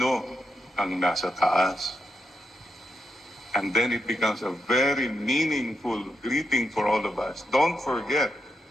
ang nasa taas? And then it becomes a very meaningful greeting for all of us. Don't forget,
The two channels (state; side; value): normal; both; correlation 0.83